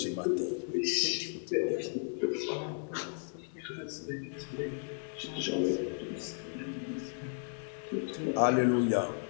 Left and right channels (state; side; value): silent; right; 55 dB below the other